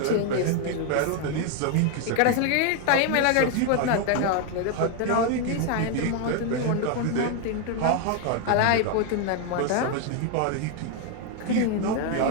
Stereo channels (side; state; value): both; different; correlation 0.01